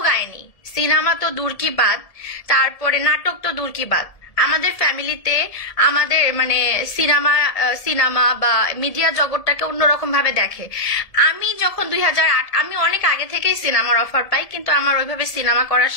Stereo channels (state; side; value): late; right; 1.7 ms